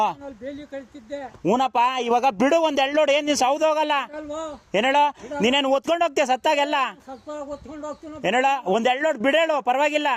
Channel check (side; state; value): both; identical; correlation 1.00